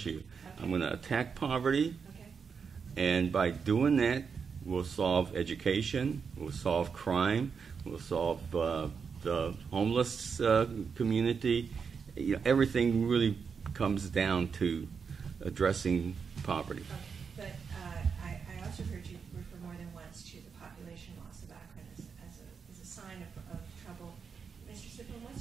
Okay. I'm going to attack poverty, Okay. and by doing that, we'll solve education, we'll solve crime, we'll solve the homeless community. Everything really comes down to addressing poverty. Okay. But I also heard you refer more than once to the population loss of Akron as a sign of trouble. Mr. Sipplen,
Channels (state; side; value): quieter; left; 6.0 dB